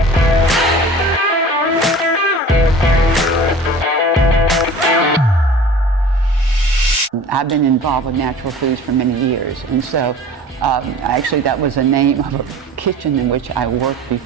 I've been involved with natural foods for many years, and so actually that was the name of a kitchen in which I worked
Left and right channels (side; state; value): both; normal; correlation 0.42